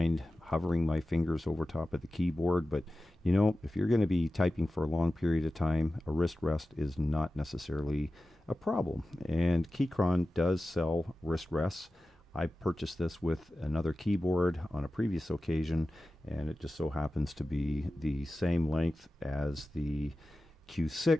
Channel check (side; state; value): both; normal; correlation 0.95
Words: hovering my fingers over top of the keyboard, but if you're going to be typing for a long period of time, a wrist rest is not necessarily a problem. And Keychron does sell wrist rests. I purchased this with another keyboard on a previous occasion, and it just so happens to be the same length as the